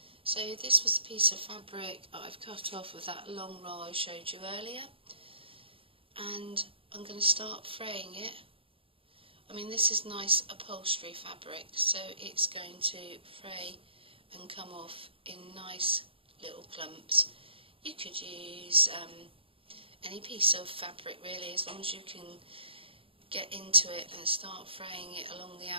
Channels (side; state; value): left; late; 0.26 ms